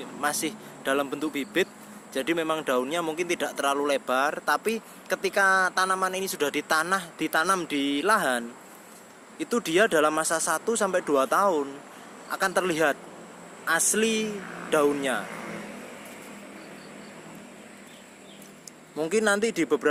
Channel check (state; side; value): identical; both; correlation 1.00